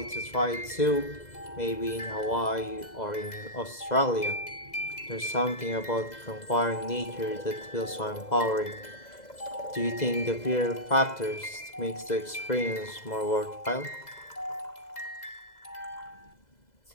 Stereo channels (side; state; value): right; late; 2.0 ms